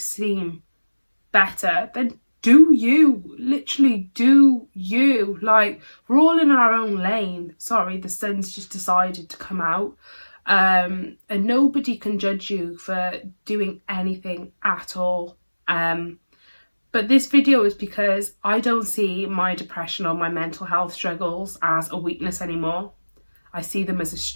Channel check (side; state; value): both; inverted; correlation -1.00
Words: better, then do you. Literally do you. Like, we're all in our own lane. Sorry, the sun's just decided to come out. And nobody can judge you for doing anything at all. But this video is because I don't see my depression or my mental health struggles as a weakness anymore. I see them as a